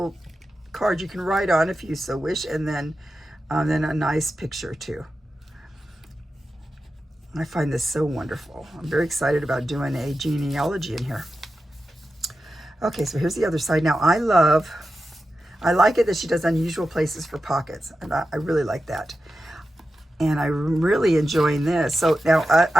card you can write on if you so wish. And then a nice picture too. I find this so wonderful. I'm very excited about doing a genealogy in here. Okay, so here's the other side. Now I like it that she does unusual places for pockets. And I really like that. And I'm really enjoying this. So now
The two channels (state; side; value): normal; both; correlation 0.91